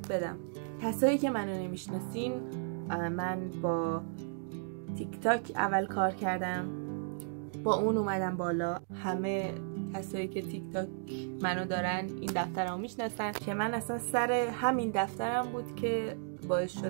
بدم. کسایی که منو نمیشناسین، من با تیک تاک اول کار کردم، با اون اومدم بالا. همه کسایی که تیک تاک منو دارن این دفتر رو میشناسن که من اصلا سر همین دفترم بود که باعث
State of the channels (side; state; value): left; silent; digital silence